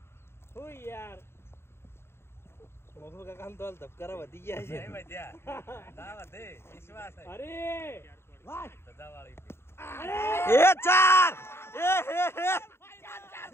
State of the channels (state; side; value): late; right; 0.12 ms